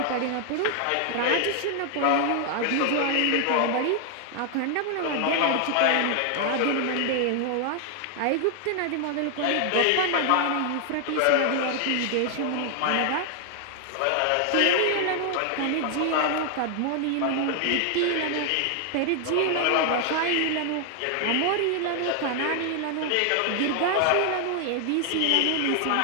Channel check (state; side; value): different; both; correlation 0.00